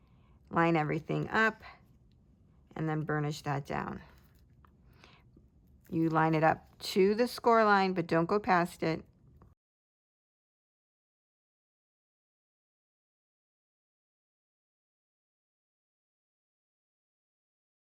Line everything up and then burnish that down. You line it up to the score line, but don't go past it.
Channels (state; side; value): identical; both; correlation 1.00